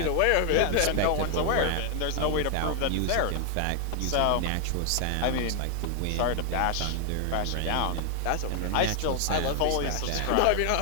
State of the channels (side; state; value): both; different; correlation 0.00